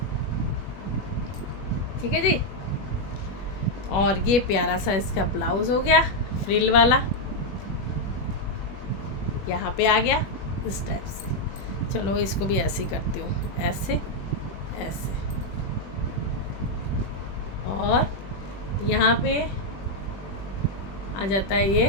ठीक है जी। और ये प्यारा सा इसका ब्लाउज़ हो गया फ्रिल वाला, यहाँ पे आ गया इस टाइप से। चलो इसको भी ऐसे ही करती हूँ, ऐसे ऐसे। और यहाँ पे आ जाता है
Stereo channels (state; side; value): late; right; 21 ms